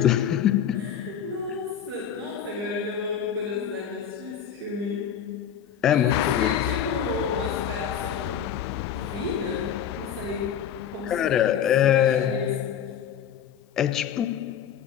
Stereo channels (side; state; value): right; quieter; 8.8 dB